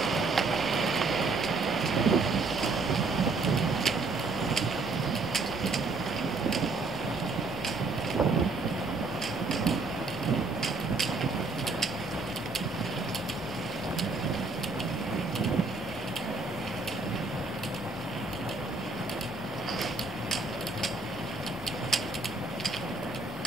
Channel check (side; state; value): left; quieter; 3.7 dB